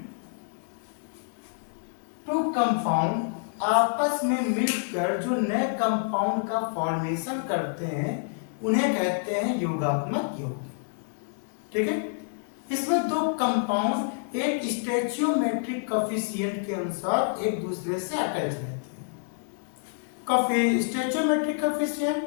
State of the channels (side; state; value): right; silent; digital silence